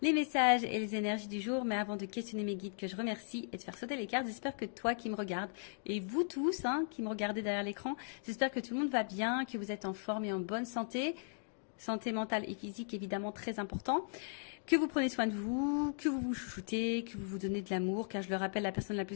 messages et les énergies du jour. Mais avant de questionner mes guides que je remercie et de faire sauter les cartes, j'espère que toi qui me regardes et vous tous qui me regardez derrière l'écran, j'espère que tout le monde va bien, que vous êtes en forme et en bonne santé. Santé mentale et physique évidemment très important. Que vous prenez soin de vous, que vous vous chouchoutez, que vous vous donnez de l'amour, car je le rappelle, la personne la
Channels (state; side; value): silent; right; digital silence